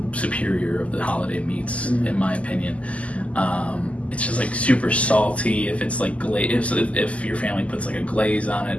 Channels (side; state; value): right; late; 0.065 ms